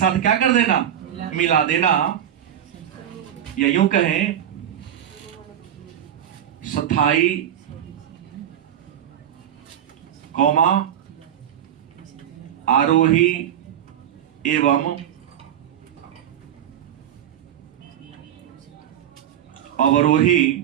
क्या कर देना? मिला देना। या यूं कहें, स्थाई कौमा आरोही एवं अवरोही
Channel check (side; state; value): left; quieter; 10.2 dB